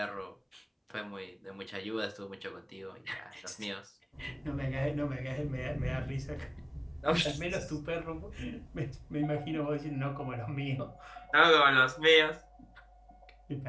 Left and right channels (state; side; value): identical; both; correlation 1.00